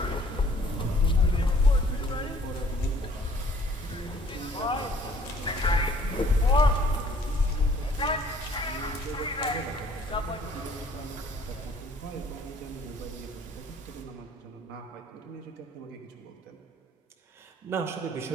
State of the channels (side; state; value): both; normal; correlation 0.58